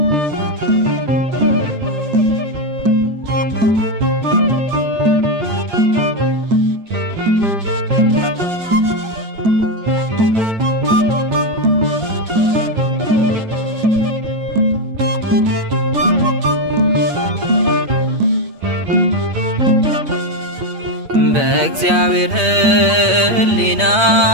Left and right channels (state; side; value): late; left; 8.7 ms